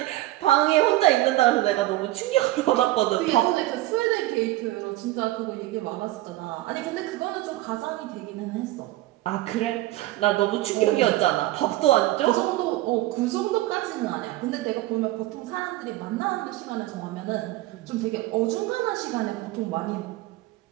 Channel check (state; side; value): quieter; left; 17.1 dB